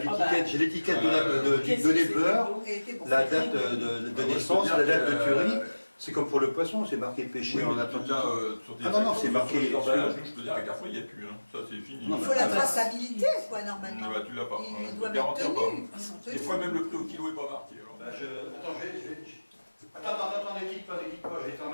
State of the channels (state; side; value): inverted; both; correlation -1.00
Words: j'ai l'étiquette de l'éleveur, la date de naissance, la date de tuerie. C'est comme pour le poisson, c'est marqué pêché Oui, en là, Atlantique. sur des Non, c'est marqué. sur les emballages, je peux dire, à Carrefour, il n'y a plus. Hein. Ça, c'est fini. Il faut la traçabilité, quoi, normalement. Bah, tu l'as pas. Ils doivent être tenus. Des fois, même le prix au kilo n'est pas marqué. Alors. Bah, Attends, ne quitte pas, je vais